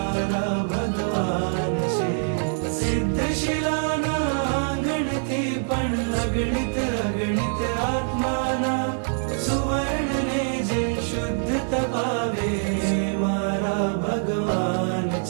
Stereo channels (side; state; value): left; silent; digital silence